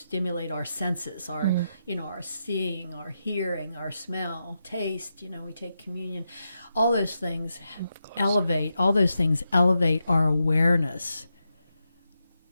our senses, our seeing, our hearing, our smell, taste. We take communion. All those things elevate our awareness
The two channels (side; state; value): both; inverted; correlation -0.86